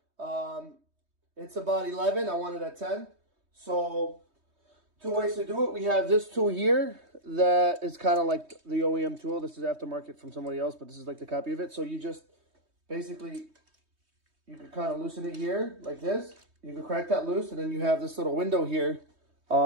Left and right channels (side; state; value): left; late; 3.2 ms